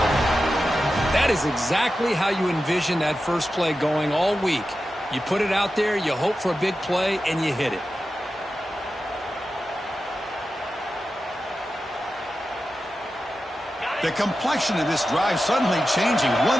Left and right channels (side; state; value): both; normal; correlation 0.92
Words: That is exactly how you envision that first play going all week. You put it out there, you hope for a big play, and you hit it. The complexion of this drive suddenly changing.